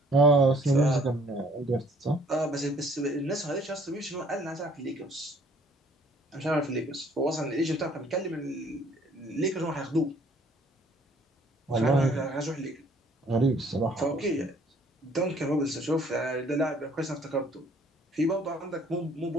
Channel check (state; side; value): normal; both; correlation 0.59